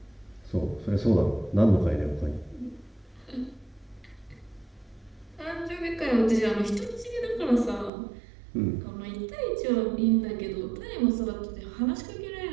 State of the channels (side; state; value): left; drops out; at 7.9 s